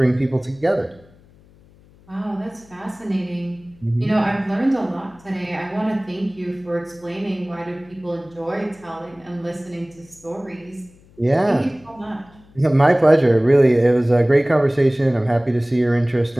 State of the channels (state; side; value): noise; left; hum, 27 dB below the sound